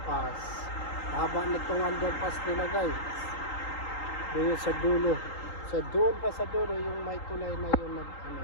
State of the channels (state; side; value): late; right; 3.8 ms